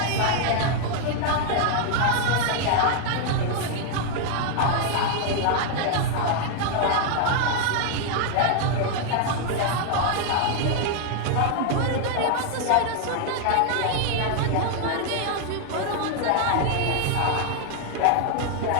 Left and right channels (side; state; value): both; different; correlation 0.00